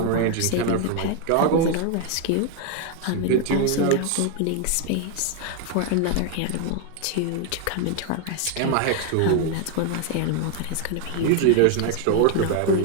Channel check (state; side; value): different; both; correlation 0.00